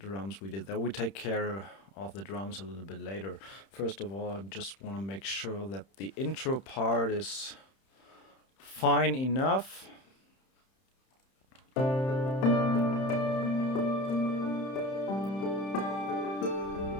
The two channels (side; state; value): right; late; 31 ms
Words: drums we did there. We take care of the drums a little bit later. First of all, I just want to make sure that the intro part is fine enough.